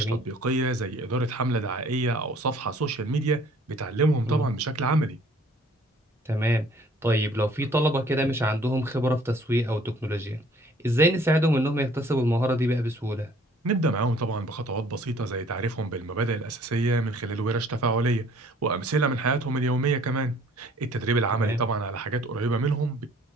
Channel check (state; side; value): normal; both; correlation 0.56